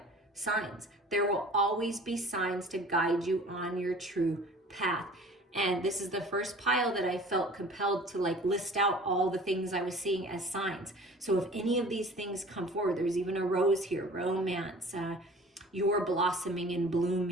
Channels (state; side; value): normal; both; correlation 0.46